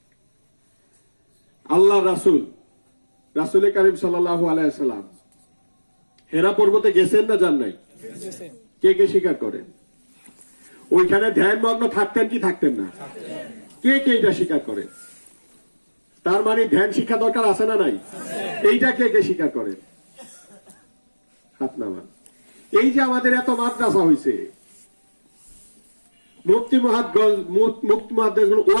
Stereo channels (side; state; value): both; inverted; correlation -1.00